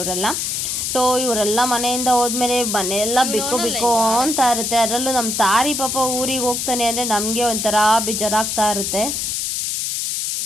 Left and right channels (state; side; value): noise; left; hiss, 1 dB below the sound